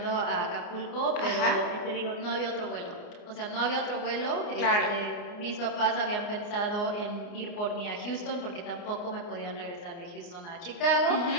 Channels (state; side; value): late; right; 29 ms